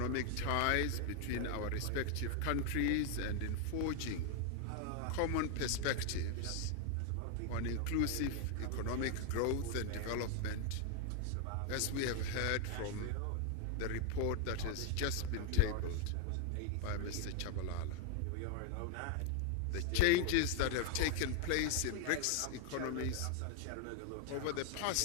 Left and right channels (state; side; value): different; both; correlation 0.00